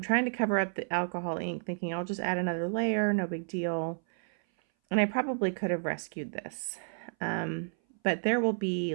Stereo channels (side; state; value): left; silent; 57 dB below the other